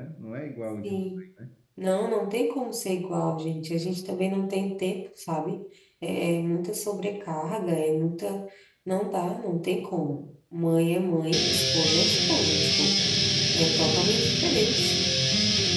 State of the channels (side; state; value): both; identical; correlation 1.00